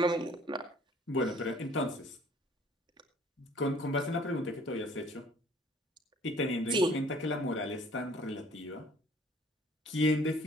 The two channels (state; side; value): normal; both; correlation 0.55